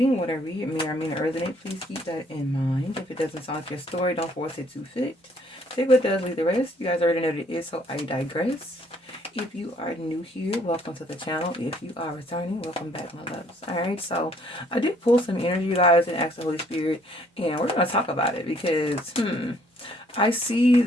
What I read may or may not resonate. Please keep that in mind. If it doesn't sound like your story, don't force it to fit. Take what does, leave the rest. You guys already know what it is, so I digress. If you are new here, welcome to the channel. If you are returning, welcome back, my loves. Alright, so I did pull some energy, you guys, and ask the Holy Spirit, and we're going to talk about it because, I see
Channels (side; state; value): both; normal; correlation 0.63